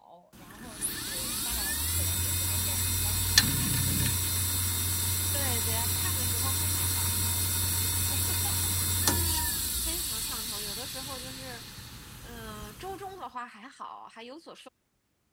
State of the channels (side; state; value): both; identical; correlation 1.00